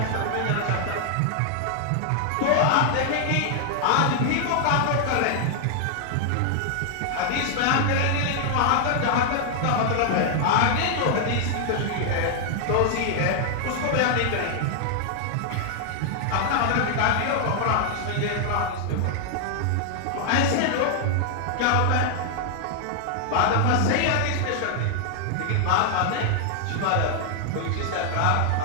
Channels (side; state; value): both; different; correlation 0.00